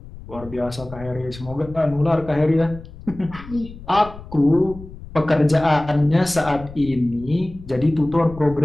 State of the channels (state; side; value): noise; left; rumble, 16 dB below the sound